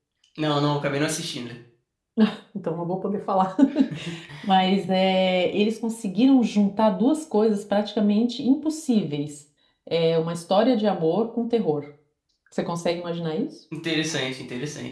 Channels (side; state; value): both; identical; correlation 1.00